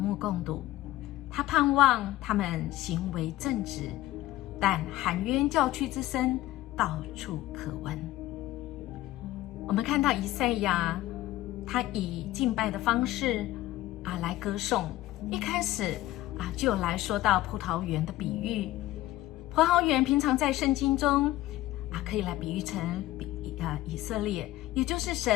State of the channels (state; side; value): quieter; right; 15.8 dB